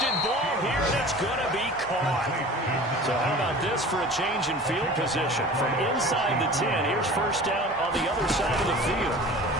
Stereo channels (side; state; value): both; normal; correlation 0.40